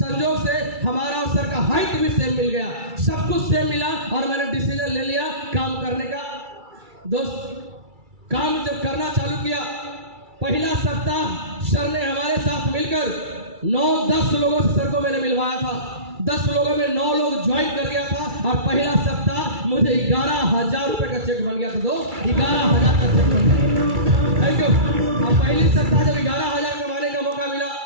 से हमारा और सर का हाइट भी सेम मिल गया, सब कुछ सेम मिला, और मैंने डिसीजन ले लिया काम करने का। दोस्त, काम जब करना चालू किया, पहला सप्ताह सर ने हमारे साथ मिलकर 9-10 लोगों से सर को मैंने मिलवाया था। 10 लोगों में 9 लोग ज्वाइन कर गया था, और पहला सप्ताह मुझे 11,000 रुपए का चेक बन गया था। दोस्त, 11,000 का चेक बन गया। Thank you. और पहली सप्ताह जब 11,000 कमाने का मौका मिला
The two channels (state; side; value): late; left; 2.3 ms